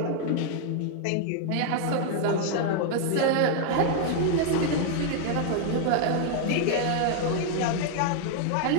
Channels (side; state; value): both; different; correlation 0.00